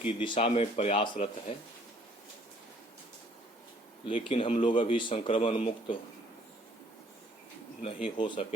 दिशा में प्रयासरत है, लेकिन हम लोग अभी संक्रमण मुक्त नहीं हो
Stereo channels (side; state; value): both; normal; correlation 0.61